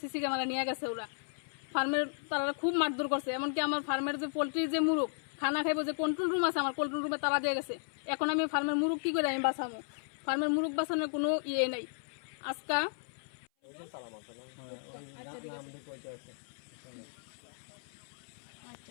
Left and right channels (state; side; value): silent; right; 55 dB below the other